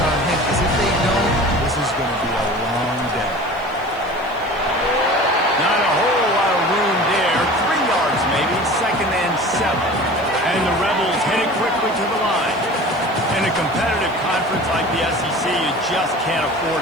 on him, because if they don't, this is going to be a long day. Not a whole lot of room there. 3 yards maybe, 2nd and 7. And the Rebels headed quickly to the line. In a competitive conference like the SEC, you just can't afford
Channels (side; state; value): right; noise; hiss, 28 dB below the sound